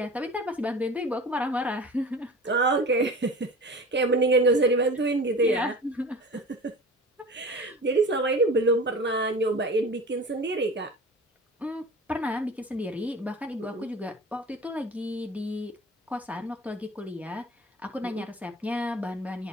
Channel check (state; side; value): normal; both; correlation 0.37